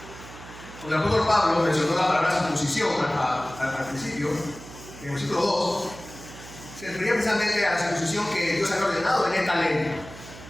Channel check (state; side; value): noise; right; hum, 16 dB below the sound